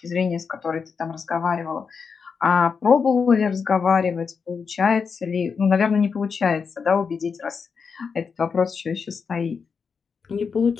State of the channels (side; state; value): right; quieter; 5.7 dB